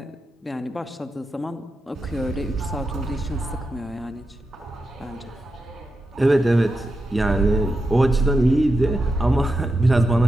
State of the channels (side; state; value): both; normal; correlation 0.89